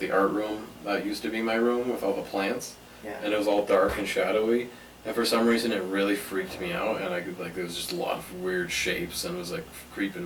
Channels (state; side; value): identical; both; correlation 1.00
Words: art room that used to be my room with all the plants, Yeah. and it was all dark and shadowy, and for some reason it really freaked me out, and I could like there was just a lot of weird shapes, and it was like